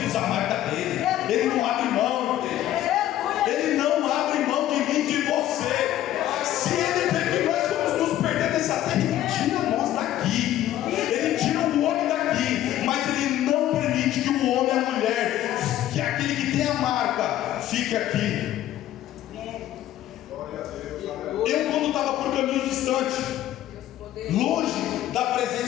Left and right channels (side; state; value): right; quieter; 12.9 dB